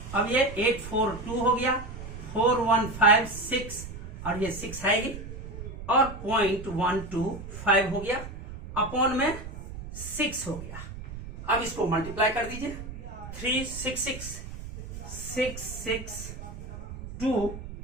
अब ये 842 हो गया, 4156 और ये 6 है और 0.125 हो गया, अपॉन में 6 हो गया। अब इसको मल्टीप्लाई कर दीजिए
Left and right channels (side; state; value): right; noise; rumble, 11 dB below the sound